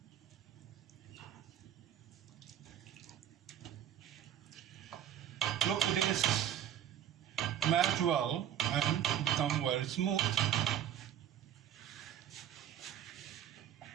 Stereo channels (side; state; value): left; quieter; 10.4 dB